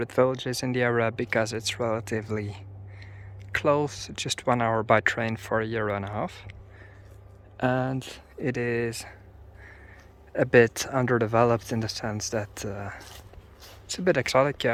villages in the area because it's relatively close, just 1 hour by train for a year and a half. And it is a bit underdeveloped in the sense that it's a bit exotic. You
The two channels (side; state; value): both; identical; correlation 1.00